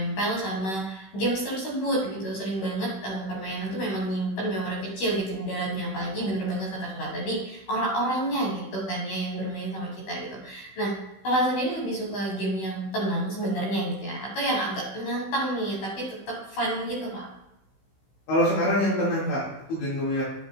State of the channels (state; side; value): late; right; 16 ms